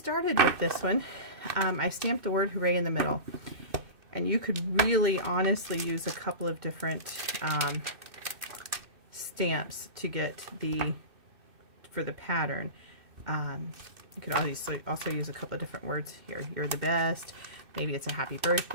with this one, I stamped the word hooray in the middle. And you could really honestly use a couple of different stamps to get for the pattern. You could also use a couple of different words here. You're the best. Maybe it's a happy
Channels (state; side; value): late; left; 2.6 ms